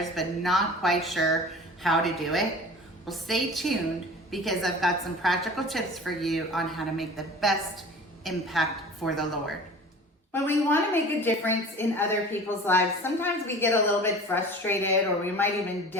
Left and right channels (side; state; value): both; normal; correlation 0.40